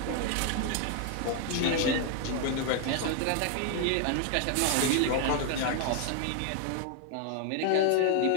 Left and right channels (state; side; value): different; both; correlation 0.00